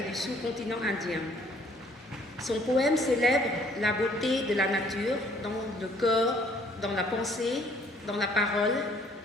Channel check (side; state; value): both; normal; correlation 0.60